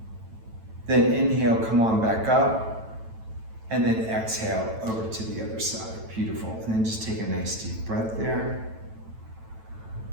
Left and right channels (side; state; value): left; late; 9.0 ms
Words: Then inhale, come on back up. And then exhale over to the other side. Beautiful. And then just take a nice deep breath there.